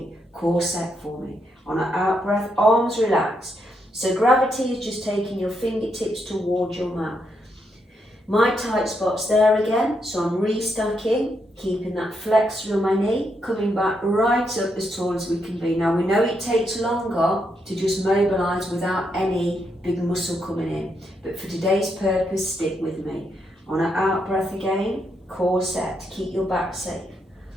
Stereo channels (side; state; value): both; normal; correlation 0.79